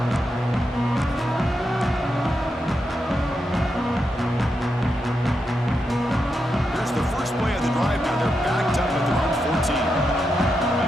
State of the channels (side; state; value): both; normal; correlation 0.85